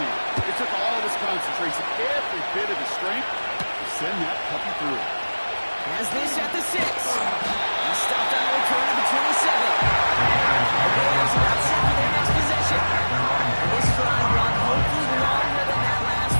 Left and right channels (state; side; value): inverted; both; correlation -1.00